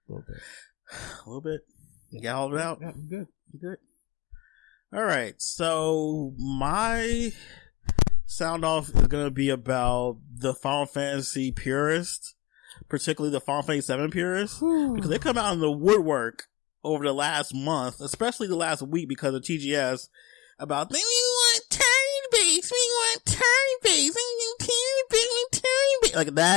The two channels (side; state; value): right; quieter; 19.1 dB